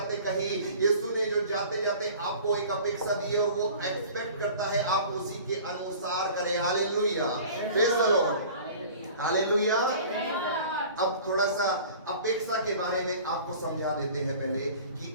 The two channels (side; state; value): both; inverted; correlation -0.44